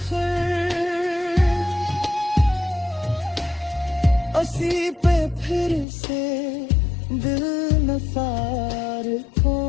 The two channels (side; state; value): right; drops out; at 5.9 s